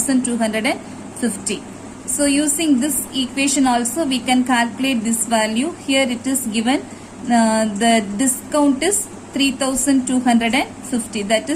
So using this equation also we can calculate this value. Here it is given the discount is 3250, that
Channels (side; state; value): both; identical; correlation 1.00